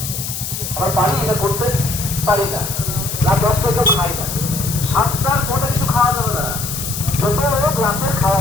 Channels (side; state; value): left; noise; hiss, 5 dB below the sound